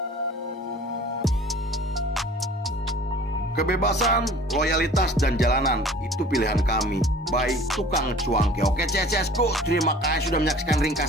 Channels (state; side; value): normal; both; correlation 0.47